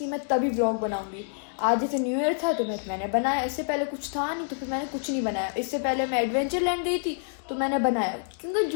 मैं तभी ब्लॉग बनाऊंगी। आज जैसे न्यू ईयर था तो मैंने बनाया, इससे पहले कुछ था नहीं तो फिर मैंने कुछ नहीं बनाया। इससे पहले मैं एडवेंचर लैंड गई थी तो मैंने बनाया, क्योंकि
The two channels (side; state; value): right; silent; digital silence